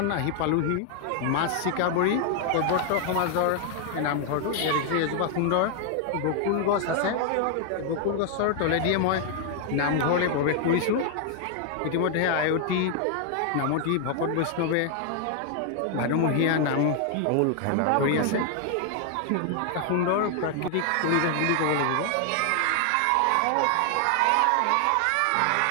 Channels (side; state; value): both; different; correlation 0.00